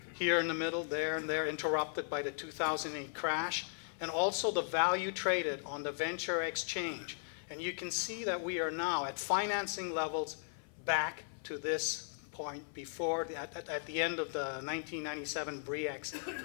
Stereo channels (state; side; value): silent; right; 53 dB below the other